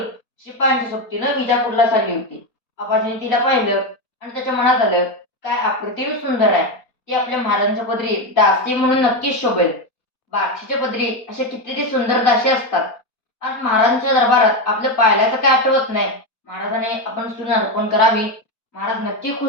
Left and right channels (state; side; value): late; right; 4.3 ms